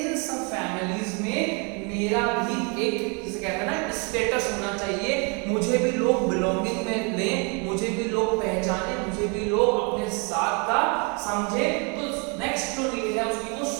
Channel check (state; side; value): quieter; left; 33.6 dB